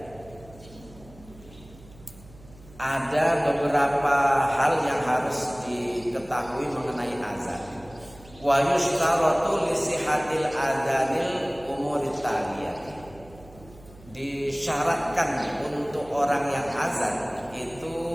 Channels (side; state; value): right; noise; hum, 22 dB below the sound